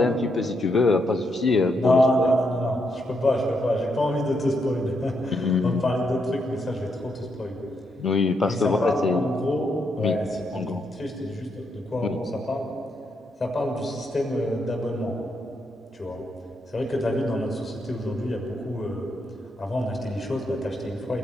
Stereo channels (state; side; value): normal; both; correlation 0.79